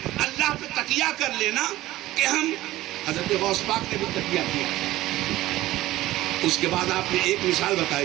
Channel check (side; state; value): left; quieter; 16.2 dB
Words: اللہ پہ تکیہ کر لینا کہ ہم، حضرت غوث پاک نے بھی تکیہ کیا۔ اس کے بعد آپ نے ایک مثال